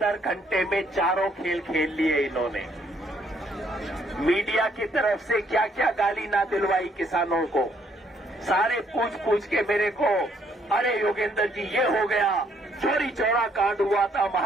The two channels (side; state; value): both; normal; correlation 0.68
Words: घंटे में चारों खेल खेल लिए इन्होंने। मीडिया की तरफ से क्या क्या गाली ना दिलवाई किसानों को। सारे पूछ के मेरे को, अरे योगेंद्र जी ये हो गया, चोरी चौरा कांड हुआ था,